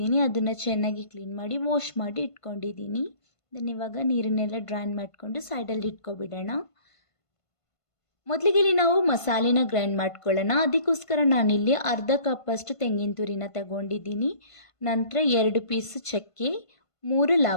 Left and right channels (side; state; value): right; late; 1.5 ms